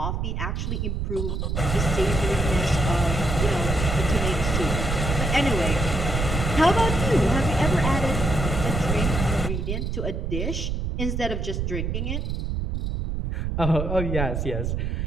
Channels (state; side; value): noise; right; rumble, 1 dB below the sound